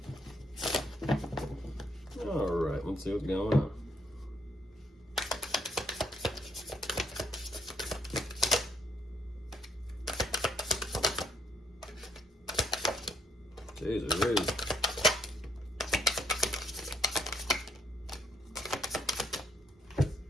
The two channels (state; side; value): normal; both; correlation 0.70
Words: All right, let's see what's going on. Jesus.